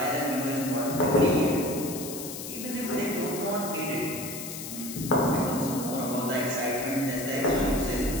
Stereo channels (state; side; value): noise; left; hiss, 9 dB below the sound